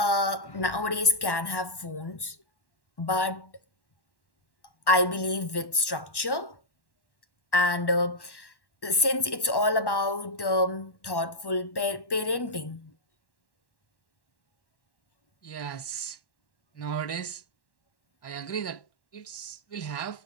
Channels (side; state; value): right; late; 1.1 ms